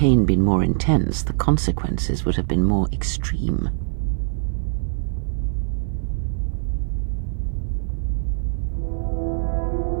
been more intense, the consequences would have been more extreme.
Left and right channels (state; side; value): silent; left; 64 dB below the other